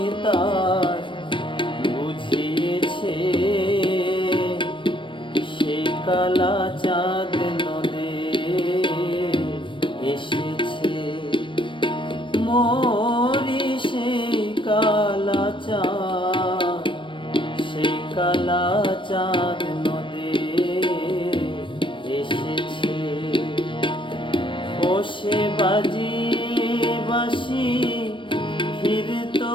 তার বুঝিয়েছে সে কালা চাঁদ নদে এসেছে মরি সেই কালা চাঁদ সেই কালা চাঁদ নদে এসেছে ও সে বাজিয়ে বাঁশি ফিরতো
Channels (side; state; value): right; late; 0.24 ms